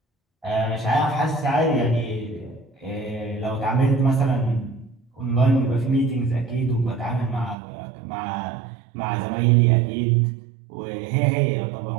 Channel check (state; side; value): drops out; left; at 7.6 s